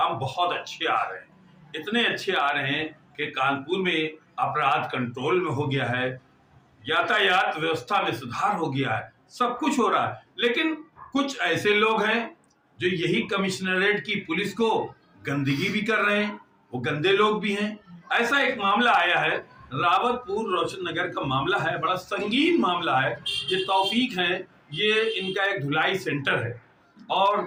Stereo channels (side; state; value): both; identical; correlation 1.00